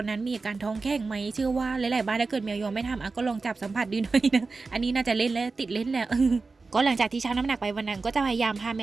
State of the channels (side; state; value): left; quieter; 4.0 dB